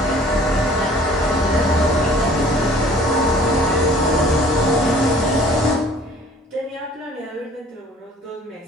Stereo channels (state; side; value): normal; both; correlation 0.52